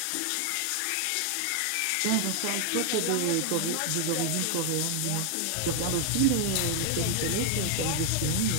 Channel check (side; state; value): both; different; correlation 0.00